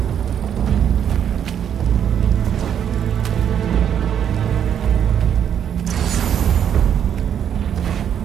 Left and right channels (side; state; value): left; quieter; 9.0 dB